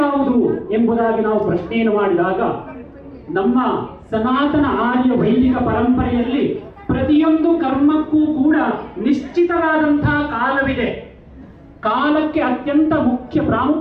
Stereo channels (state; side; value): identical; both; correlation 1.00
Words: ಎಂಬುದಾಗಿ ನಾವು ಪ್ರಶ್ನೆಯನ್ನು ಮಾಡಿದಾಗ, ನಮ್ಮ ಸನಾತನ ಆರ್ಯ ವೈದಿಕ ಪರಂಪರೆಯಲ್ಲಿ ಪ್ರತಿಯೊಂದು ಕರ್ಮಕ್ಕೂ ಕೂಡ ನಿಶ್ಚಿತವಾದಂತಹ ಕಾಲವಿದೆ. ಕಾಲಕ್ಕೆ ಅತ್ಯಂತ ಮುಖ್ಯ